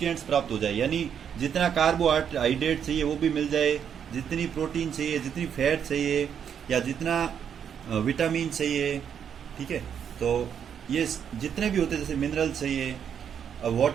प्राप्त हो जाए, यानी जितना कार्बोहाइड्रेट चाहिए वो भी मिल जाए, जितनी प्रोटीन चाहिए, जितनी फैट चाहिए, या जितना विटामिन चाहिए। ठीक है, तो ये जितने भी होते हैं, जैसे मिनरल चाहिए,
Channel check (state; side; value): quieter; left; 8.2 dB